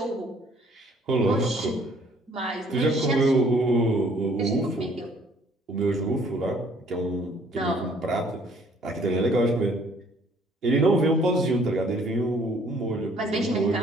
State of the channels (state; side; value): normal; both; correlation 0.60